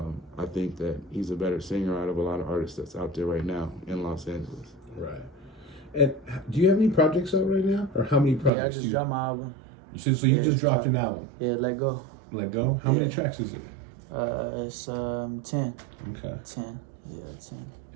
I think that he's a better singer out of a lot of artists that's out there right now in Los Angeles. Right. And do you have any projects out right now, or how many projects? Yeah, I just dropped my album. So you just dropped an album? Yeah, Let Go. Let Go. How many tracks is it? It's 10. Okay. 10. Yeah, 10.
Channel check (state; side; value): drops out; left; at 8.5 s